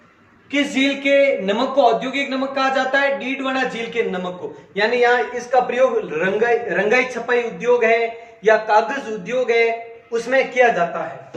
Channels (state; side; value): identical; both; correlation 1.00